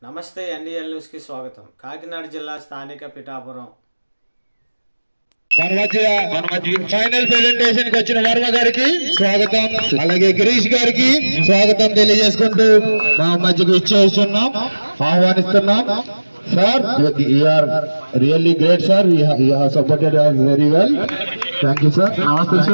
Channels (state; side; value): inverted; both; correlation -1.00